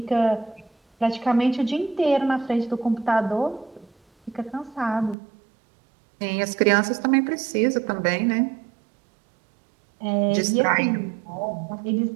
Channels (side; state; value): left; drops out; at 5.2 s